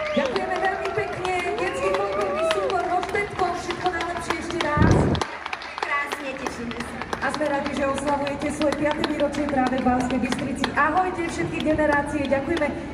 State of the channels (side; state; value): both; identical; correlation 1.00